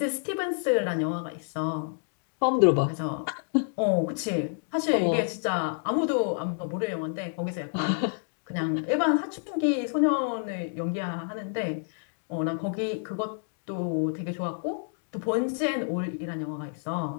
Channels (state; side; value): silent; right; digital silence